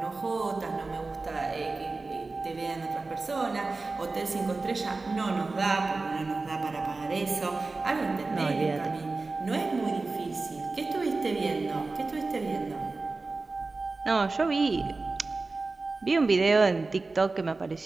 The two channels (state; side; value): quieter; left; 3.6 dB